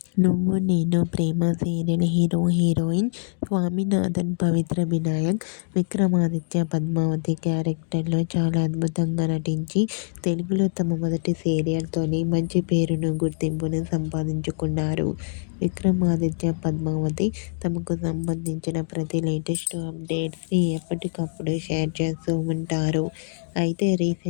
నువ్వు నేను ప్రేమ సీరియల్ హీరోయిన్ స్వామినాథన్, పవిత్ర వినాయక్, విక్రమాదిత్య, పద్మావతి క్యారెక్టర్లో చాలా అద్భుతంగా నటించి తెలుగులో తమ మొదటి సీరియల్తోనే మంచి పేరును, గుర్తింపును సంపాదించుకున్నారు. విక్రమాదిత్య, పద్మావతి తమకు సంబంధించిన ప్రతి లేటెస్ట్ అప్డేట్స్ని ఎప్పటికప్పుడు షేర్ చేస్తూ ఉంటారు. అయితే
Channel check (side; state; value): right; silent; digital silence